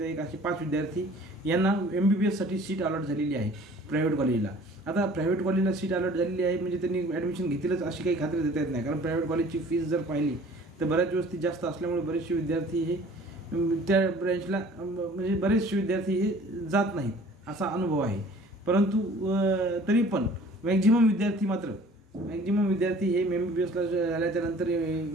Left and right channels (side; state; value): both; normal; correlation 0.50